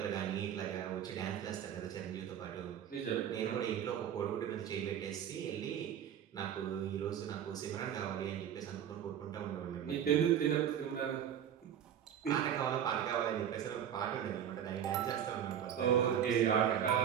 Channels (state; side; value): quieter; left; 9.4 dB